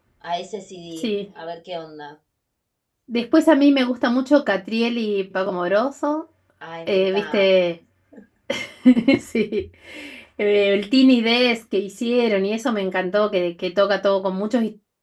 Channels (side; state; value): both; identical; correlation 1.00